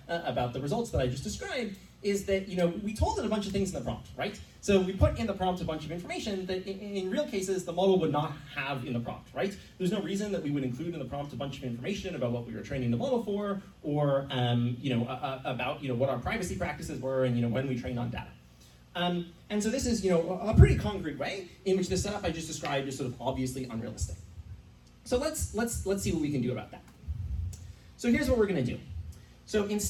about the results that I just described is that, we told it a bunch of things in the prompt, right? So we put in the prompt a bunch of information that in real cases the model would not have in the prompt, right? There's no reason that we would include in the prompt a bunch of information about what we were training the model for, or, about, what our privacy practices were and, when we trained on data. And so this is, a pretty concrete way in which the setup I just described is sort of obviously unrealistic. So let's see what we can do about that. So here's what we're going to do. So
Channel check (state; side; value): identical; both; correlation 1.00